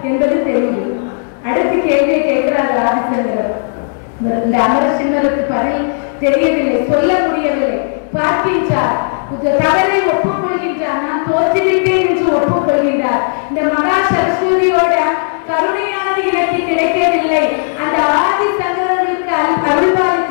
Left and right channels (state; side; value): silent; right; 69 dB below the other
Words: சொல்கின்றார், நான் தோற்றுவிட்டேன் என்று ஒப்புக்கொள்கின்றார். இந்த மகா சரஸ்வதியோட கருணையானது எனக்கு கிடைக்கவில்லை, அந்த ஆதி சங்கரர்களுக்கு